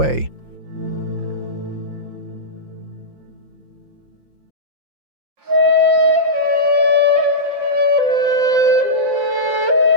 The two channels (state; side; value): late; left; 5.7 ms